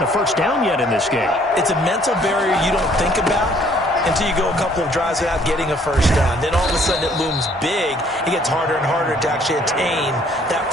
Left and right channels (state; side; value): normal; both; correlation 0.61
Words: a 1st down yet in this game. It's a mental barrier you don't think about until you go a couple of drives without getting a first down. Then all of a sudden it looms big. It gets harder and harder to actually attain that